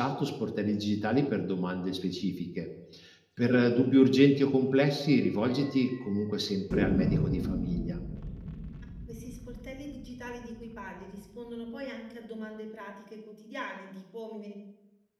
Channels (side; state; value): both; identical; correlation 1.00